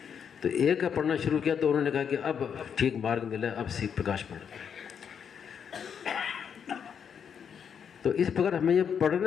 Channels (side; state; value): right; quieter; 7.5 dB